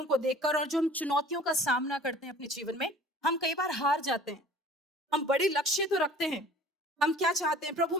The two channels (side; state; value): both; normal; correlation 0.48